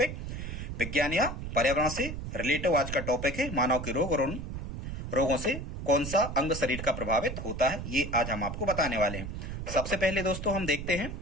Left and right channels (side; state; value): right; noise; rumble, 6 dB below the sound